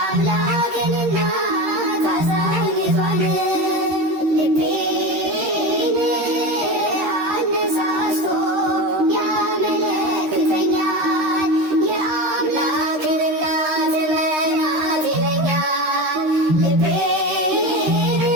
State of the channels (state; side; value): late; left; 13 ms